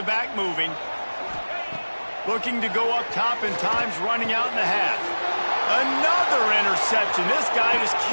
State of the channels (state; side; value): inverted; both; correlation -1.00